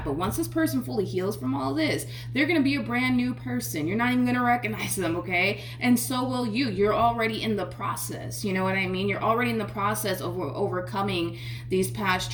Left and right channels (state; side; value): identical; both; correlation 1.00